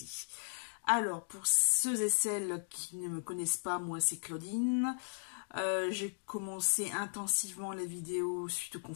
Alors pour ceux et celles qui ne me connaissent pas, moi c'est Claudine. J'ai commencé intensivement les vidéos suite au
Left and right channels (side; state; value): right; silent; digital silence